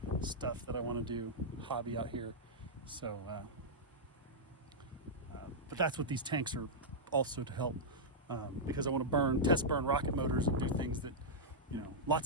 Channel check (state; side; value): normal; both; correlation -0.08